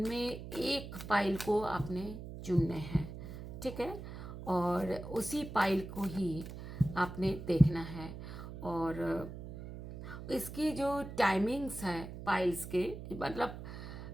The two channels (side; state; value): right; noise; hum, 10 dB below the sound